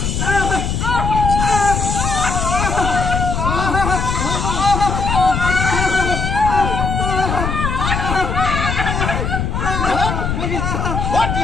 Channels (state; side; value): noise; left; rumble, 1 dB below the sound